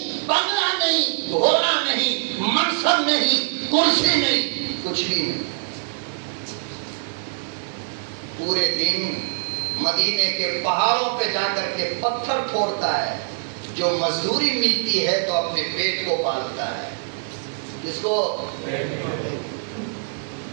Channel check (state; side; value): silent; left; digital silence